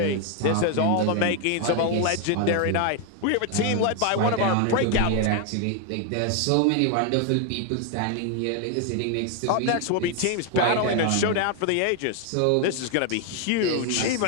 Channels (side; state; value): both; different; correlation 0.01